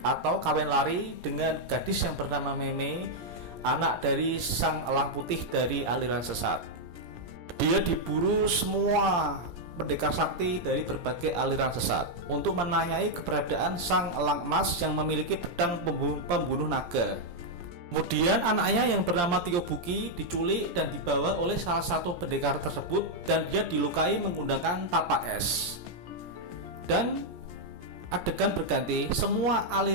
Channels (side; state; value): left; late; 17 ms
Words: kawin lari dengan gadis yang bernama Mei, anak dari sang elang putih dari aliran sesat. Dia diburu semua pendekar sakti dari berbagai aliran sesat untuk menanyai keberadaan sang elang emas yang memiliki pedang pembunuh naga. Kemudian anaknya yang bernama Tio Buki diculik dan dibawa oleh salah satu pendekar tersebut dan dia dilukai menggunakan tapak es. Dan adegan berganti, semua